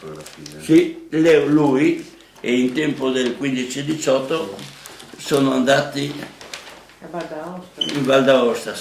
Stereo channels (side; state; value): both; identical; correlation 1.00